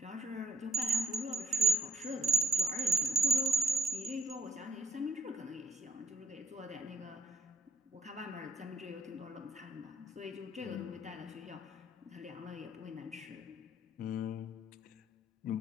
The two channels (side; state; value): both; normal; correlation 0.61